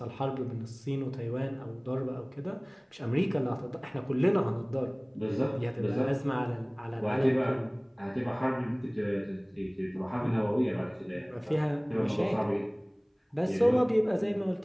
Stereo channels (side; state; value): both; identical; correlation 1.00